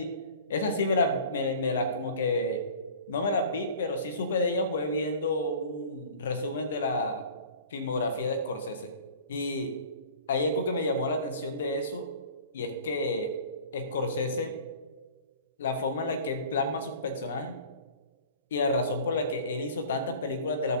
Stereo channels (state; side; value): inverted; both; correlation -0.44